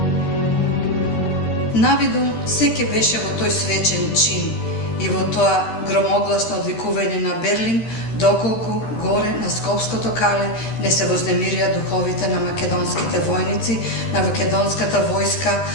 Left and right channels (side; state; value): right; late; 13 ms